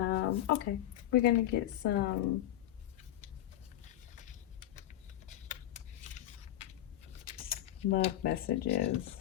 okay, we're going to get some love messages,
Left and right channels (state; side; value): quieter; right; 13.1 dB